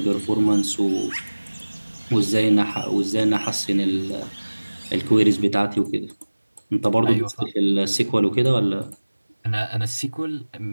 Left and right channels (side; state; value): both; inverted; correlation -1.00